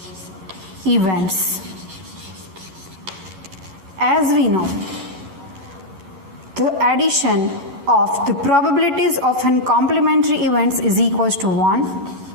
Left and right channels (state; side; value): late; left; 12 ms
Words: events. As we know, the addition of the probabilities of an complementary events is equals to 1.